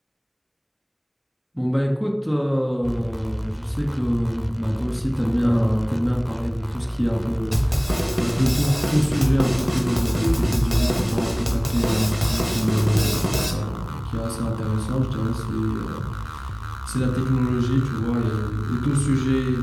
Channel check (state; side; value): identical; both; correlation 1.00